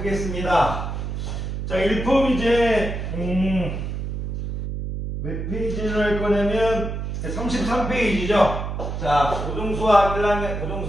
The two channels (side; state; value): right; noise; hum, 4 dB below the sound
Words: 자, 1품 이제, 몇 페이지를 할 거냐면, 33페이지죠. 자, 고등수학 1학년,